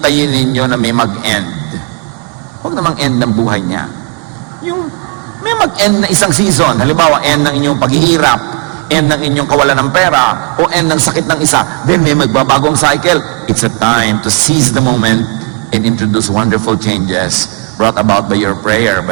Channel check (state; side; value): quieter; left; 35.2 dB